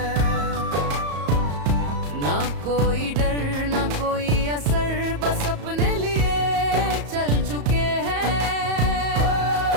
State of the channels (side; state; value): left; late; 34 ms